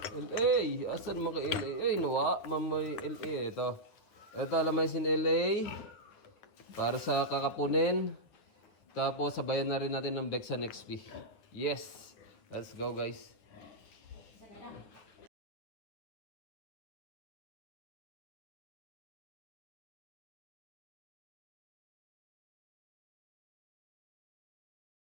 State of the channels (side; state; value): right; late; 9.4 ms